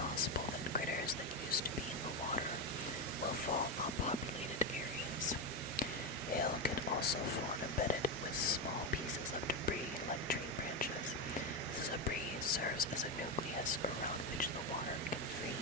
that critters that used to be in the water will fall on populated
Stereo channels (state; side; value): normal; both; correlation 0.11